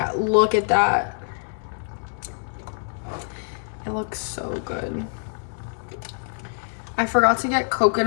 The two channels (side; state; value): right; silent; digital silence